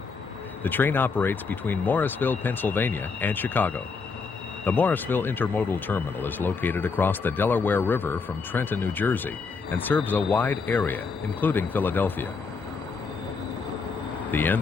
The train operates between Morrisville, Pennsylvania, and Chicago. The Morrisville Intermodal Terminal is located across the Delaware River from Trenton, New Jersey, and serves a wide area, including Philadelphia. The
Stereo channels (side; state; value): right; quieter; 4.8 dB